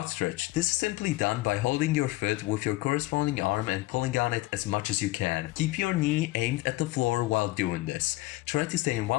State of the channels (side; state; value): right; quieter; 19.2 dB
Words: stretch. This is simply done by holding your foot with your corresponding arm and pulling on it as much as you can. Keep your knee aimed at the floor while doing this. Try to stay in